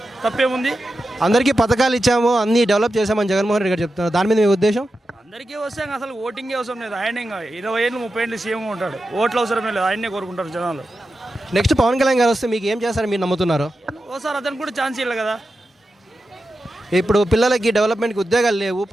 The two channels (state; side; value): normal; both; correlation 0.91